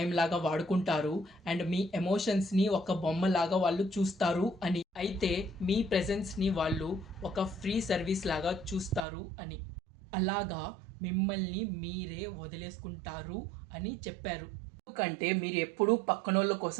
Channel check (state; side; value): drops out; left; at 9.1 s